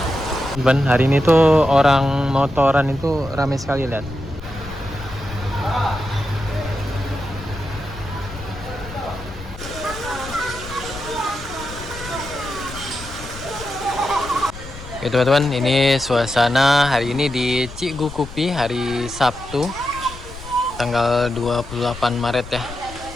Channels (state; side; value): noise; left; rumble, 14 dB below the sound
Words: Hari ini tuh orang motoran itu ramai sekali, lihat. Oke teman-teman, ini suasana hari ini di Cigukupi hari Sabtu tanggal 28 Maret ya.